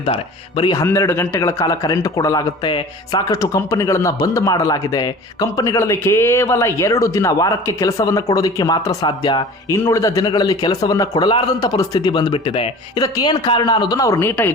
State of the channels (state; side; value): normal; both; correlation 0.41